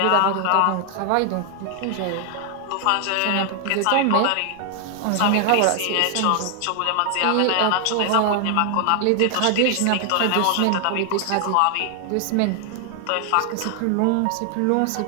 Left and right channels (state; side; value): different; both; correlation 0.00